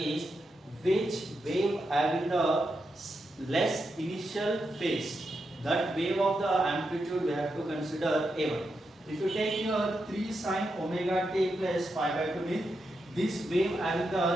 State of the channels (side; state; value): both; normal; correlation 0.85